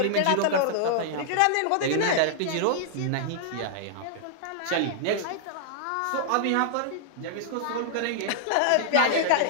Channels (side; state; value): both; different; correlation -0.01